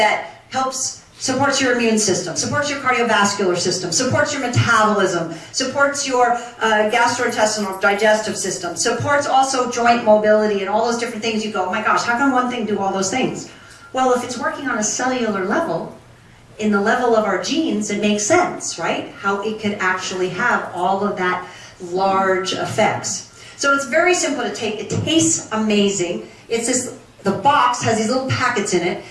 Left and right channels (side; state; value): both; identical; correlation 1.00